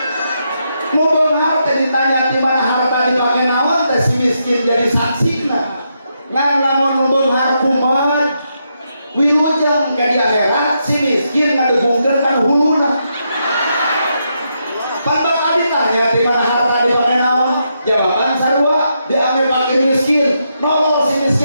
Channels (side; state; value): both; inverted; correlation -0.81